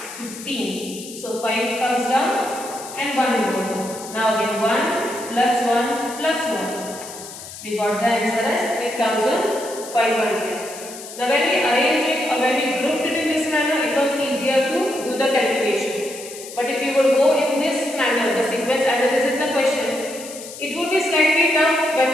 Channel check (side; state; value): left; noise; hiss, 13 dB below the sound